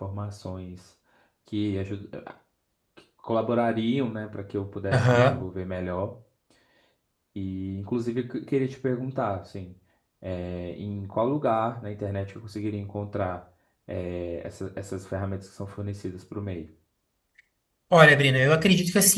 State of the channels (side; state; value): both; identical; correlation 1.00